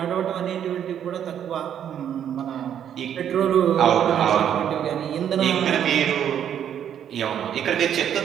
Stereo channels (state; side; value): quieter; left; 9.4 dB